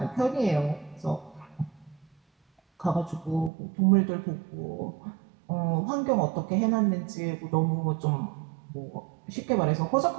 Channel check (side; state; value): left; drops out; at 3.5 s